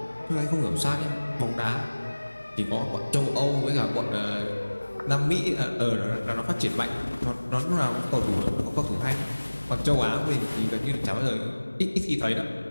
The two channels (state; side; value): inverted; both; correlation -1.00